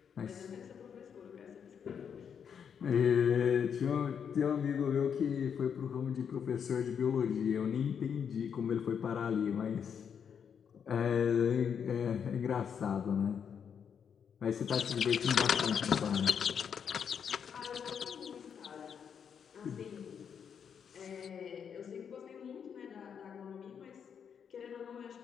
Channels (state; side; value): quieter; right; 7.4 dB